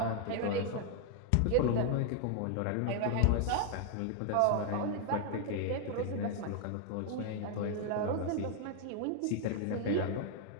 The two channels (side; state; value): both; different; correlation 0.00